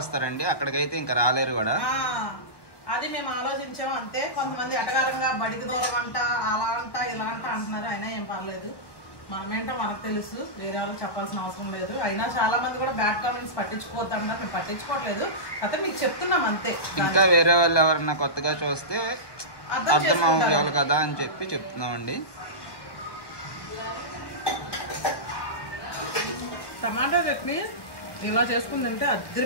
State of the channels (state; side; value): late; right; 1.2 ms